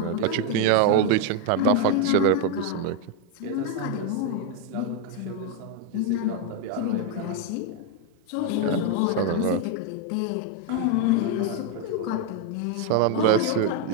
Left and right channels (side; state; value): both; different; correlation 0.01